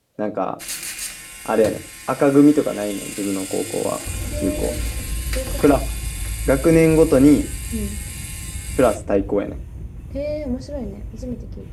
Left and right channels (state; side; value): identical; both; correlation 1.00